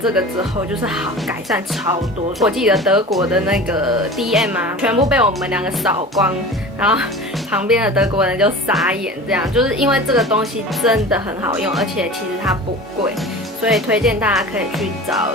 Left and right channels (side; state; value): both; normal; correlation 0.36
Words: 个之后，就是好改善超多。我记得德国的那个 DM 啊，全部被我们两个扫光，然后旁边的德国人就傻眼，这样就是因为这个东西真的很好用，而且其实它不贵，所以推荐大家可以去找